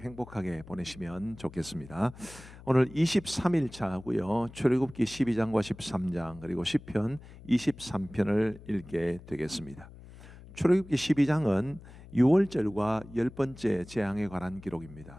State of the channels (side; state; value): left; noise; hum, 18 dB below the sound